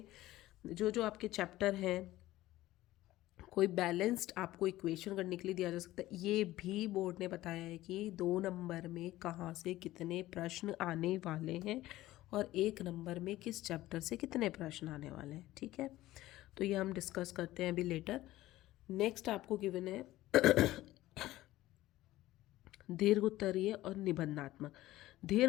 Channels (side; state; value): right; quieter; 16.1 dB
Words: जो जो आपके चैप्टर हैं, कोई बैलेंस्ड आपको इक्वेशन करने के लिए दिया जा सकता है। ये भी बोर्ड ने बताया है कि 2 नंबर में कहाँ से कितने प्रश्न आने वाले हैं और 1 नंबर में किस चैप्टर से कितने प्रश्न आने वाले हैं, ठीक है। तो ये हम डिस्कस करते हैं अभी लेटर। नेक्स्ट आपको गिवन है दीर्घ उत्तरीय और निबंधात्मक।